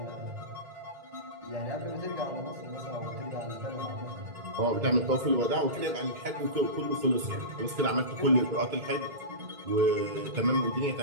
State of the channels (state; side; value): late; left; 2.2 ms